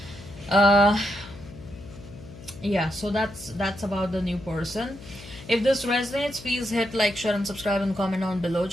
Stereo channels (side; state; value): left; noise; hum, 17 dB below the sound